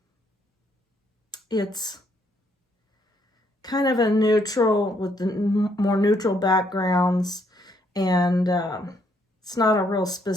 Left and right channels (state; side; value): normal; both; correlation 0.71